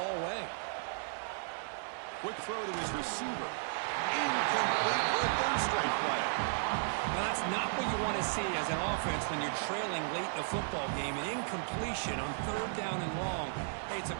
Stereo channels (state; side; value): silent; left; 55 dB below the other